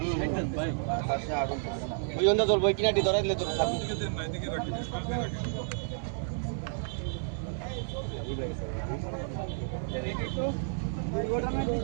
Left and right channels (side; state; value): left; silent; 57 dB below the other